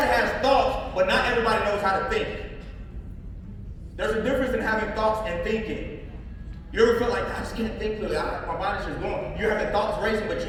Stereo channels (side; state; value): both; identical; correlation 1.00